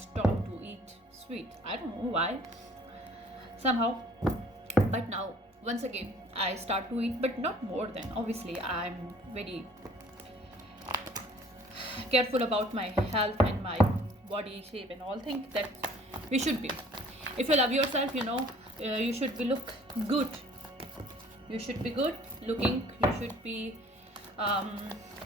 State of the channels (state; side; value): normal; both; correlation 0.54